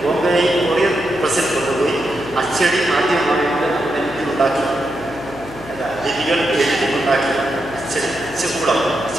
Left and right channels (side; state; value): left; noise; hum, 16 dB below the sound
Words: പ്രസിൽ കൊണ്ടുപോയി അച്ചടി ആദ്യമായിട്ട് ഉണ്ടാക്കി. ലിപികൾ എഴുതിയുണ്ടാക്കി അച്ചകൂടം